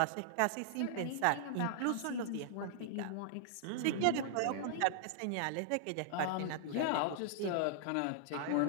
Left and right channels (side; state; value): both; different; correlation -0.01